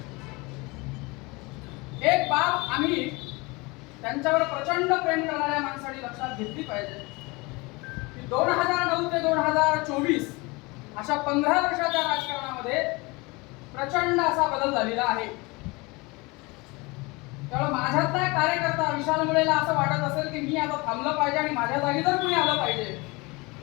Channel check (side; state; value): right; quieter; 25.3 dB